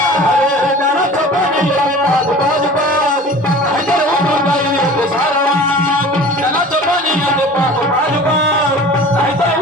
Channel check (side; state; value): both; normal; correlation 0.41